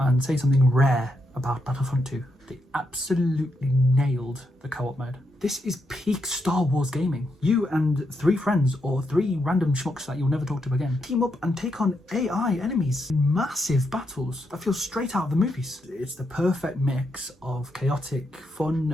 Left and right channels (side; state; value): both; normal; correlation 0.81